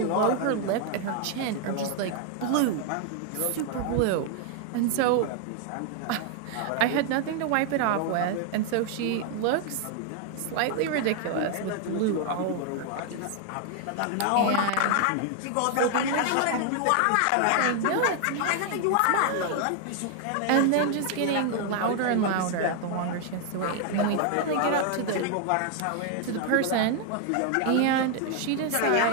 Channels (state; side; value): different; both; correlation 0.00